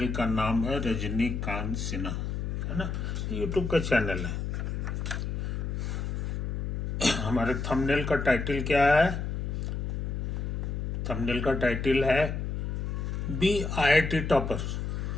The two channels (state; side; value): noise; left; hum, 2 dB below the sound